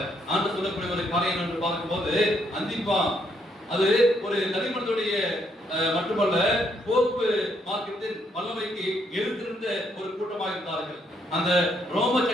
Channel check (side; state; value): both; normal; correlation 0.73